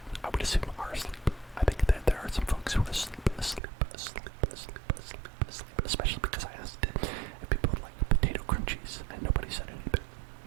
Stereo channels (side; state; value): left; drops out; at 3.6 s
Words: I would assume, are asleep. I think that there are some folks who are asleep, especially because I asked if people would like potato crunchies, and nobody said anything.